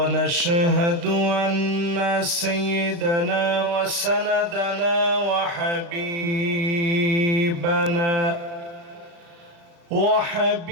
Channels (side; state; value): left; late; 35 ms